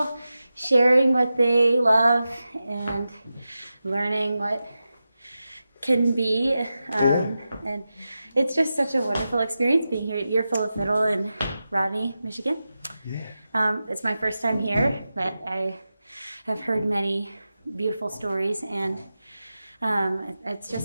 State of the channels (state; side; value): inverted; both; correlation -0.92